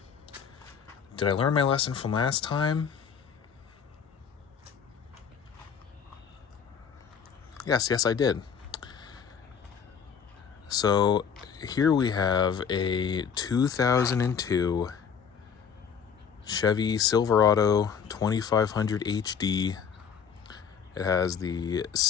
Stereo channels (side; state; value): right; quieter; 7.0 dB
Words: Did I learn my lesson from last time? Yes, I did. So here we have a 2002 Chevy Silverado 2500 HD. It has the